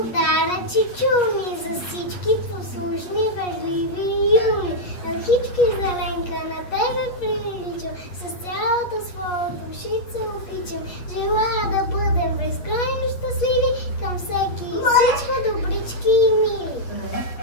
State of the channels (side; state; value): right; late; 8.5 ms